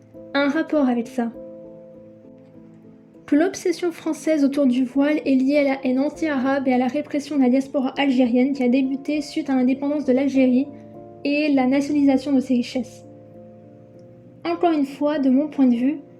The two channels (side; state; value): both; identical; correlation 1.00